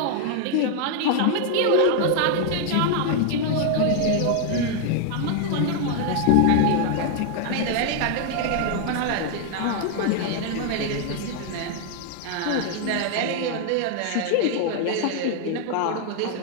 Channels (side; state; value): both; different; correlation 0.00